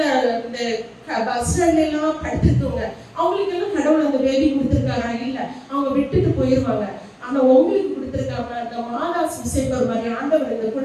இந்த பஸ் ஸ்டாண்ட்ல எல்லாம் படுத்திருக்கவங்க, அவங்களுக்கு எல்லாம் கடவுள் அந்த பேபி கொடுத்துருக்காரா? இல்ல, அவங்க விட்டுட்டு போயிருவாங்க. ஆனா உங்களுக்கு கொடுத்திருக்காங்க. அந்த மாதா சுசேபர் மாதிரி ஆண்டவர் இந்த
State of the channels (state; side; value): identical; both; correlation 1.00